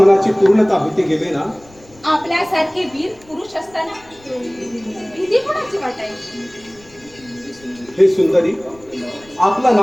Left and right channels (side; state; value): left; noise; rumble, 26 dB below the sound